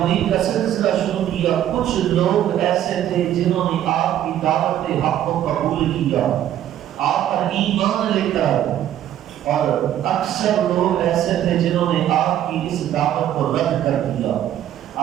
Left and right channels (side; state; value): left; quieter; 11.5 dB